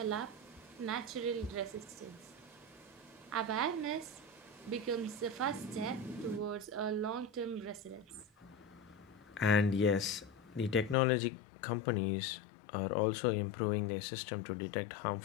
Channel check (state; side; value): drops out; right; at 11.0 s